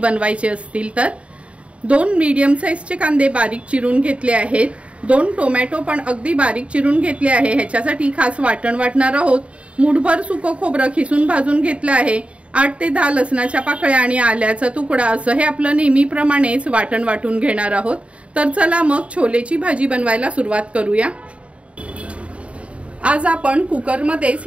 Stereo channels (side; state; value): left; late; 0.062 ms